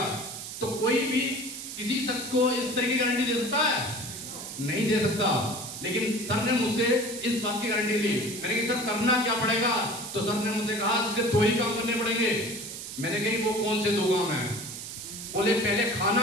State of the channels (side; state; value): right; noise; hiss, 9 dB below the sound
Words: तो कोई भी किसी शख्स को इस तरह की गारंटी दे सकता है? नहीं दे सकता। लेकिन सर ने मुझसे इस बात की गारंटी ली। मैंने कहा सर करना क्या पड़ेगा? तो सर ने मुझसे कहा इसके 2 ही काम करने पड़ेंगे। मैंने कही वो कौन से 2 काम हैं? बोले पहले